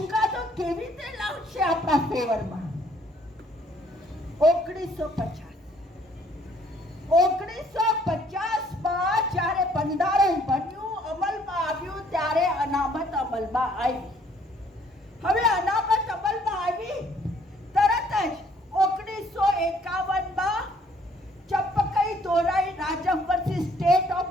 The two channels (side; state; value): both; normal; correlation 0.62